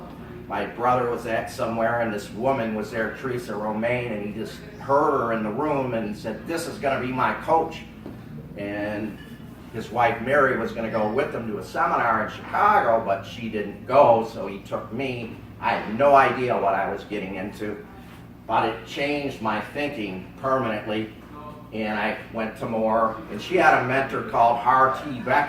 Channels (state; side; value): identical; both; correlation 1.00